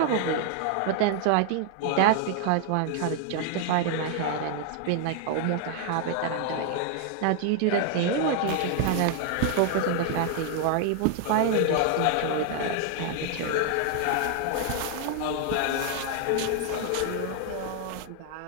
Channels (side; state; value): both; different; correlation 0.00